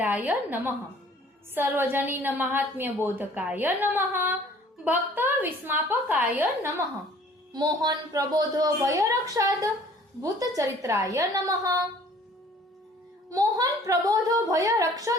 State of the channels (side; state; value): both; normal; correlation 0.53